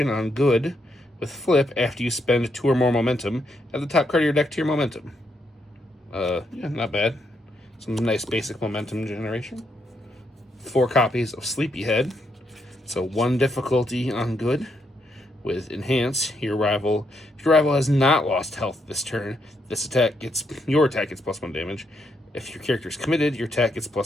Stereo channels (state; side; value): normal; both; correlation 0.78